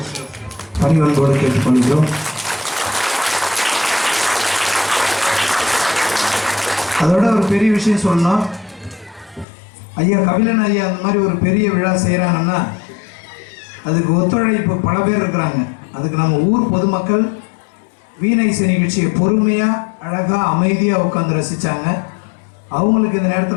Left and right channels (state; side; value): drops out; right; at 9.5 s